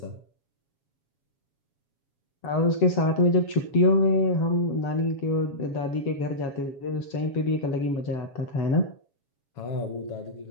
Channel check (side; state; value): right; late; 7.2 ms